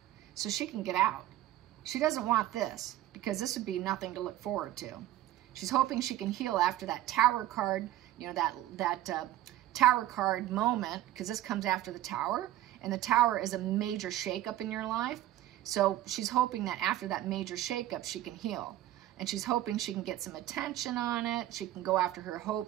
so she can get out. She doesn't want this, because this would be nothing to look forward to. She's hoping she can heal after that Tower card, you know, that Tower card moment, because this comes after the Tower, and the Tower is a major shakeup in your life. So she's hoping that after that major shakeup, she can heal. and she's hoping she can get some attention on it. She can go after her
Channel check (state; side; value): quieter; left; 14.3 dB